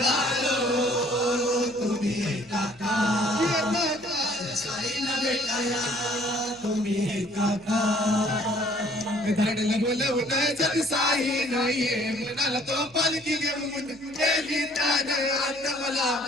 तुम्ही येता का? माझ्या साईला भेटाया तुम्ही येता का? धाडला बोलवलं जग साई नाहीये मनाला तो पालखी घेऊन गेली त्याने आता मला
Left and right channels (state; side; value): noise; left; hum, 28 dB below the sound